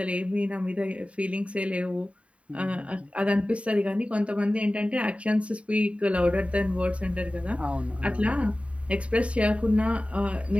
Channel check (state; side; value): late; left; 0.063 ms